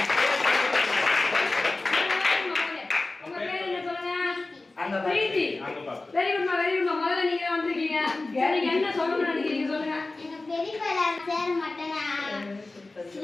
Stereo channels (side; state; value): right; quieter; 3.2 dB